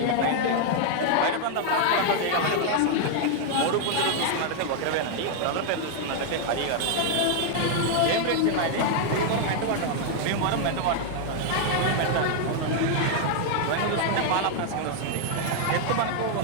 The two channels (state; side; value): different; both; correlation 0.00